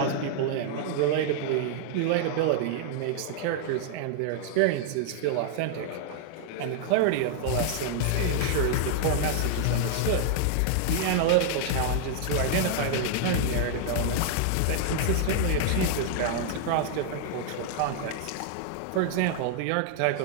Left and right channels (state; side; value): different; both; correlation -0.01